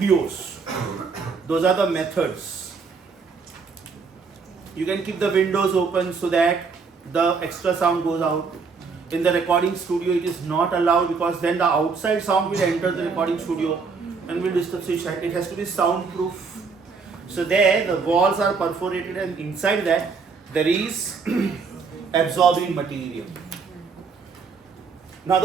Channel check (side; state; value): left; quieter; 5.0 dB